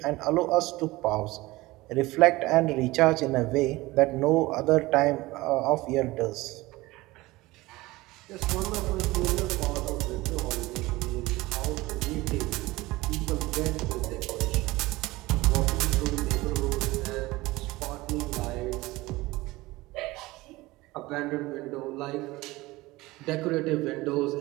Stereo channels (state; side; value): quieter; left; 20.0 dB